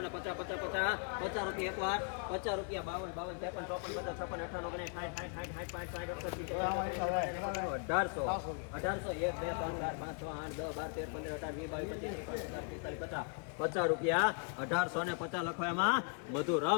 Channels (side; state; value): right; quieter; 39.5 dB